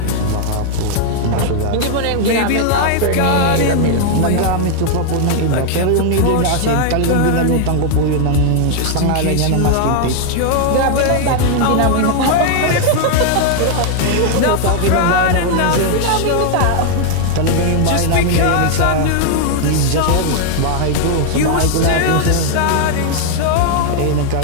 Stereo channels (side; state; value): both; different; correlation 0.00